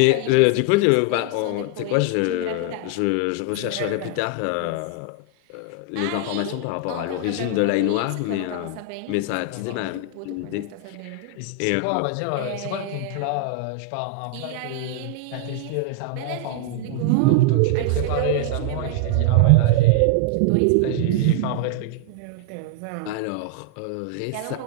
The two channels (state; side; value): different; both; correlation 0.00